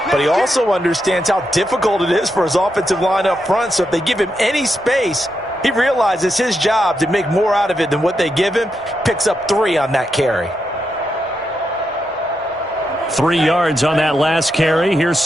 But he also understands how difficult it is for his offensive line up front. So if they give him any space, he realizes his job to make more out of it than what they give him. Picks up 3 on that carry. 3 yards on that last carry. Here's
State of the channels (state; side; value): normal; both; correlation 0.84